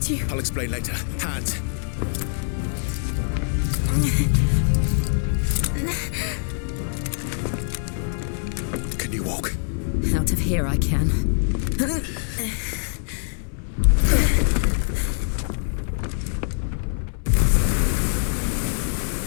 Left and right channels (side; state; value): right; silent; 63 dB below the other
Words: you... I'll explain later. Hands. Can you walk? Out of here I can.